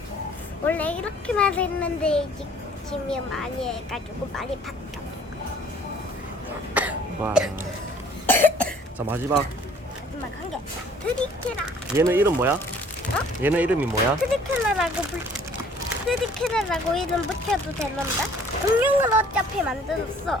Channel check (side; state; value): both; normal; correlation 0.55